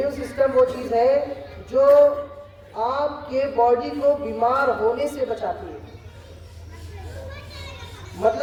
सिस्टम वो चीज है जो आपके बॉडी को बीमार होने से बचाती है।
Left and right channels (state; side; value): identical; both; correlation 1.00